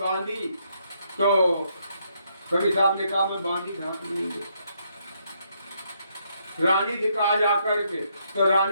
तो कबीर साहब ने कहा मैं बांदी घाट नहीं दे। रानी से कहा जाकर के, तो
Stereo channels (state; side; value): inverted; both; correlation -0.74